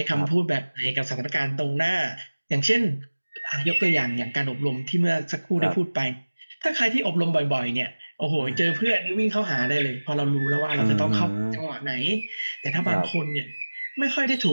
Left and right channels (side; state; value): both; inverted; correlation -1.00